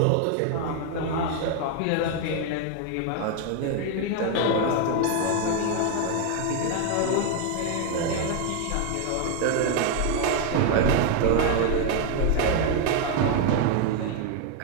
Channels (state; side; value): different; both; correlation 0.01